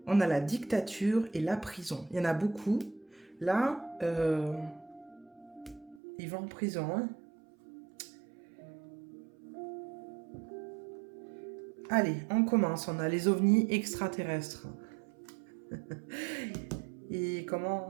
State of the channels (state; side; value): drops out; left; at 6.0 s